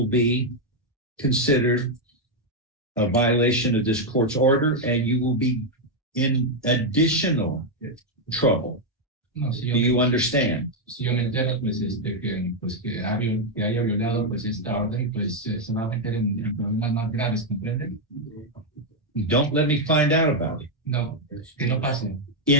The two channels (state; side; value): normal; both; correlation 0.01